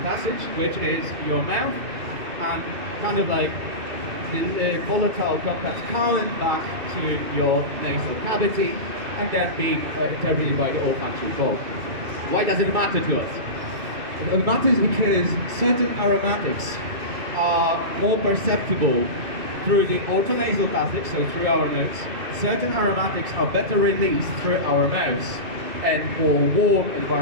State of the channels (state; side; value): late; left; 2.6 ms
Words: passage, which is your mouth, and kind of like the volatile compounds coming back to your nasal cavity, and then being interpreted by the olfactory bulb. Why does it matter to us? It matters because certain aromatics are more perceptible through the orthonasal passage, so through our nose. Certain aromatics are better released through our mouths and more warm